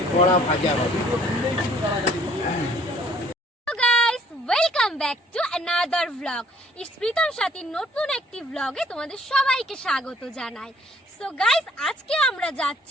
বড়া ভাজা হবে। Welcome back to another vlog. It's Pritam Sathi নতুন একটি ভ্লগে তোমাদের সবাইকে স্বাগত জানাই। সো গাইস, আজকে আমরা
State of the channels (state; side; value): normal; both; correlation 0.59